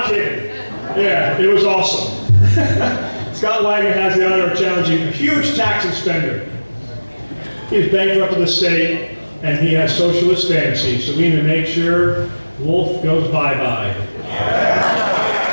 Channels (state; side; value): inverted; both; correlation -1.00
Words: kidding. Yeah, it was awesome. Scott Wagner has the honor of challenging a huge tax and spender. He's bankrupt of the state, and he has socialist fantasies, so we need to make sure Wolf goes bye-bye.